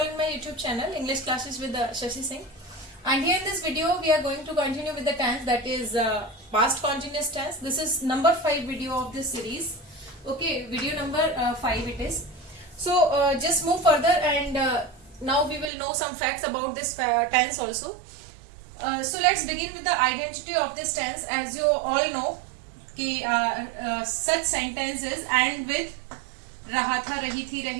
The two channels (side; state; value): left; drops out; at 15.7 s